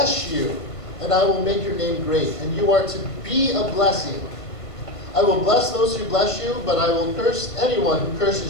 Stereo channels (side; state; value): right; late; 1.5 ms